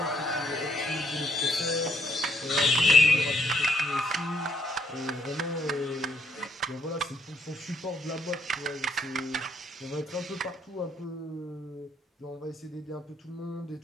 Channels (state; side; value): normal; both; correlation 0.69